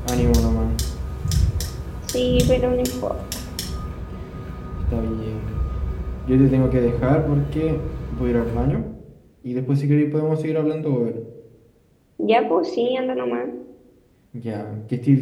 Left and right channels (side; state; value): both; identical; correlation 1.00